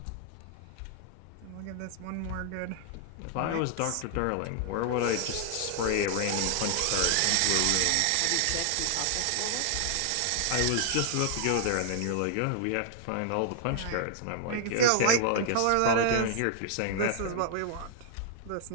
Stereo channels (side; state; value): both; different; correlation 0.00